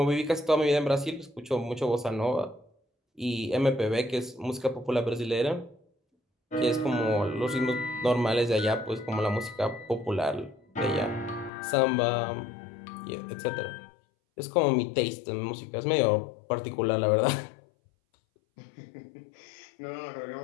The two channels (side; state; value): right; drops out; at 11.5 s